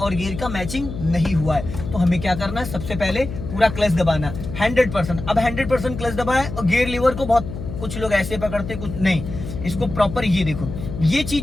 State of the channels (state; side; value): noise; left; hum, 9 dB below the sound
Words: गियर का मैचिंग नहीं हुआ है। तो हमें क्या करना है, सबसे पहले पूरा क्लच दबाना 100%। अब 100% क्लच दबाया और गियर लीवर को बहुत कुछ लोग ऐसे पकड़ते, कुछ नहीं, इसको प्रॉपर ये देखो, ये